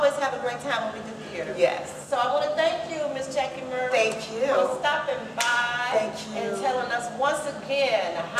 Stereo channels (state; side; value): identical; both; correlation 1.00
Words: have a great time when we do theater. Yes. So I want to thank you, Miss Jackie Murray. Thank you. For stopping by. Thank you. And telling us once again,